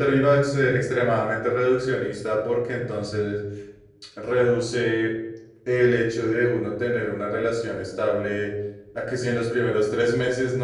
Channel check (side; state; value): both; identical; correlation 1.00